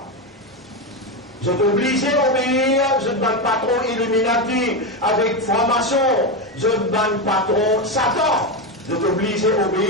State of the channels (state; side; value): normal; both; correlation 0.13